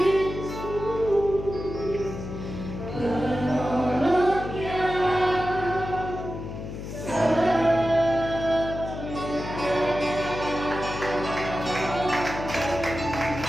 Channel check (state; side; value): noise; left; hum, 8 dB below the sound